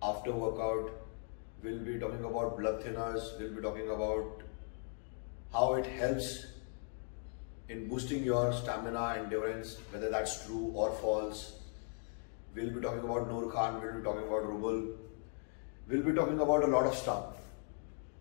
after workout, we'll be talking about blood thinners, we'll be talking about how it helps in boosting your stamina and endurance, whether that's true or false. We'll be talking about Noor Khan, we'll be talking about Rubel, we'll be talking about a lot of stuff.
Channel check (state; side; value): silent; right; 52 dB below the other